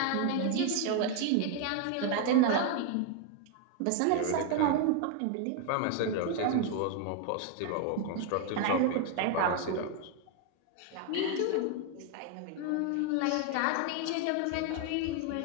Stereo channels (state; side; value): different; both; correlation 0.00